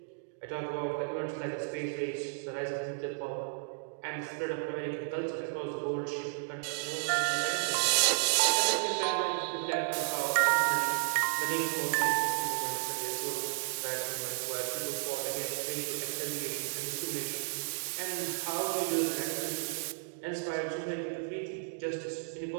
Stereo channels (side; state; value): left; silent; digital silence